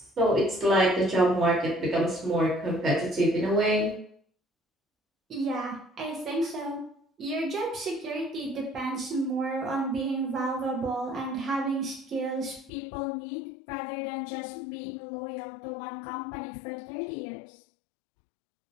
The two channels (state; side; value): drops out; right; at 12.7 s